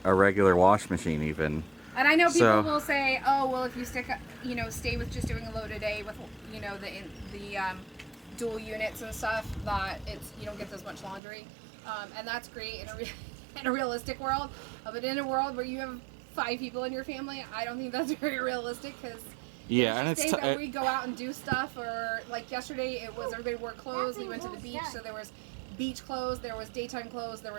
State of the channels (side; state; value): left; drops out; at 11.2 s